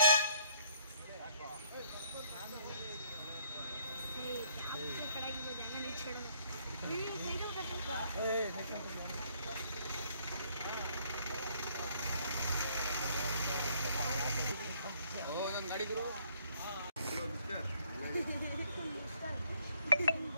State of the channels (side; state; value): both; inverted; correlation -0.65